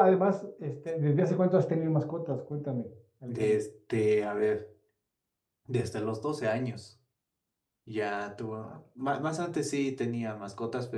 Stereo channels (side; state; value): both; identical; correlation 1.00